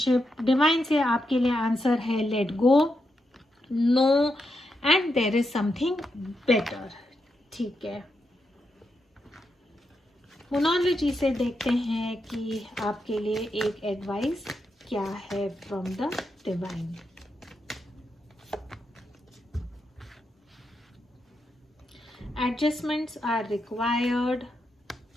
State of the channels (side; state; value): both; normal; correlation 0.84